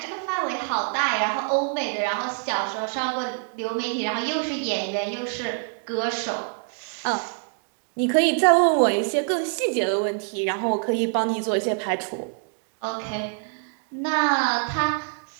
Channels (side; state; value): left; silent; 55 dB below the other